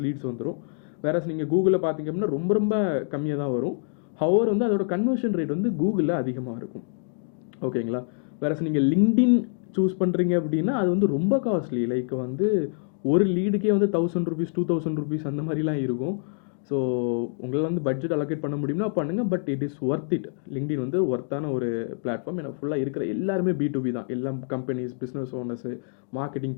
லீட்ஸ் வந்துடும். வேறஸ் நீங்கள் கூகுளில் பார்த்தீங்க அப்படின்னா ரொம்ப ரொம்ப கம்மியாக தான் வரும். ஹவர் வந்து அதோட கன்வர்ஷன் ரேட் வந்து கூகுளில் அதிகமாக இருக்கும். ஓகேங்களா? வேறஸ் நீங்கள் லிங்க்டின் சூஸ் பண்ணுறீங்க அப்படின்னா அது வந்து ரொம்ப காஸ்ட்லி, லைக் வந்து ஒரு லீடுக்கே வந்து 1,000 rupees 2,000 rupees அந்த மாதிரிலாம் இருக்கும். ஸோ உங்களால் வந்து பட்ஜெட் அலோகேட் பண்ண முடியும்னா பண்ணுங்கள், but it is worth it. LinkedIn வந்து ஒர்த்தான ஒரு பிளாட்ஃபார்ம். ஏன்னா ஃபுல்லாக இருக்கிற எல்லாருமே B2B தான், எல்லாம் companies, business owners, marketing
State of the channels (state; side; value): silent; right; digital silence